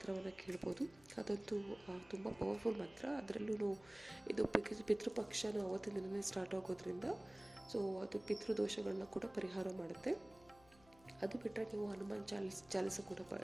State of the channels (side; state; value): left; noise; hum, 26 dB below the sound